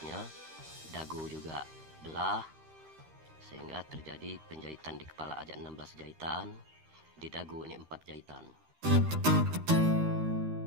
dagu juga belah, sehingga terjadi penjahitan di kepala aja 16 jahitan, di dagu ini 4 jahitan.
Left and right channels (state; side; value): late; left; 13 ms